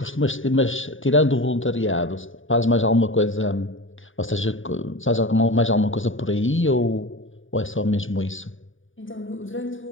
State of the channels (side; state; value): right; late; 0.57 ms